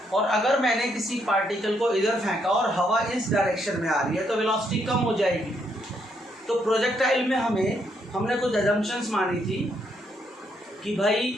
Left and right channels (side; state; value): both; normal; correlation 0.75